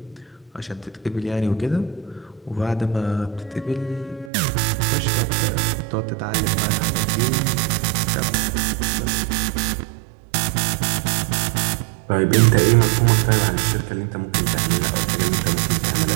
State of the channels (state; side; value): drops out; left; at 4.3 s